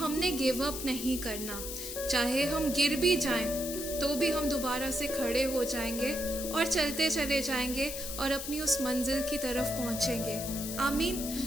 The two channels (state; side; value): noise; left; hiss, 6 dB below the sound